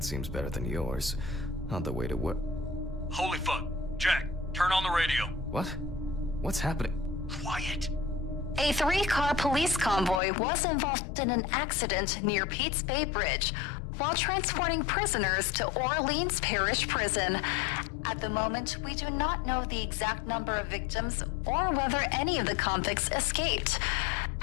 seems better than yours. On the way to work. Holy fuck. Jack, turn on the radio. What? What's happening? Quiet. A 3-car police convoy was involved in an accident near Pete's Bay Bridge while transporting prisoners to Orleans Parish Prison. At the moment, we do not know the exact number of victims or whether any of the convicts escaped.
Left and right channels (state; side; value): drops out; right; at 10.2 s